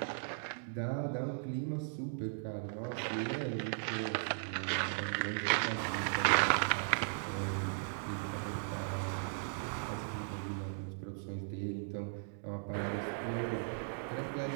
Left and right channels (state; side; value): silent; left; digital silence